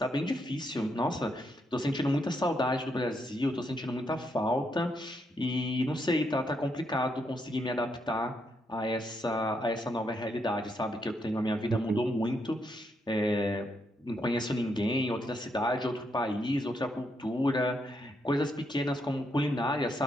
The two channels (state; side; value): normal; both; correlation 0.78